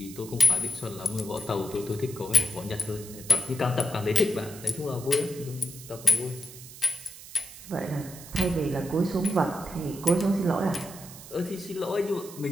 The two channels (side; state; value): right; noise; hiss, 15 dB below the sound